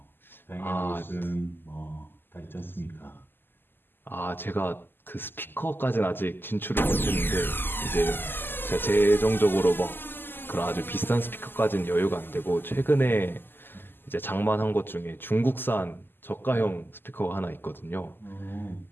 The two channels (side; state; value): right; late; 0.096 ms